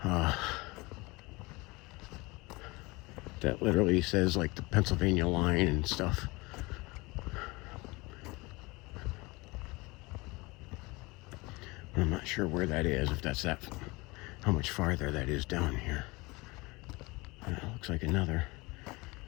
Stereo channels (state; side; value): quieter; right; 24.0 dB